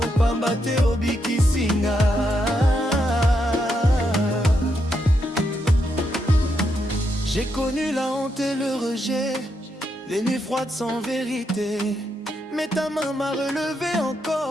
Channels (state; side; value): normal; both; correlation 0.81